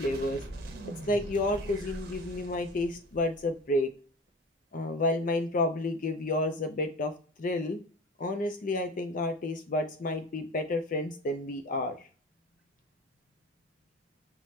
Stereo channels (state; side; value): normal; both; correlation 0.36